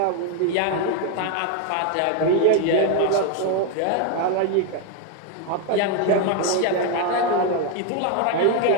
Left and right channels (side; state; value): both; different; correlation 0.01